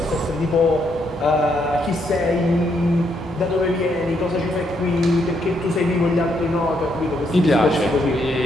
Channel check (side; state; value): both; normal; correlation 0.75